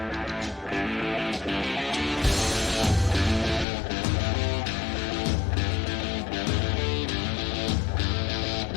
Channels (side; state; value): right; drops out; at 3.7 s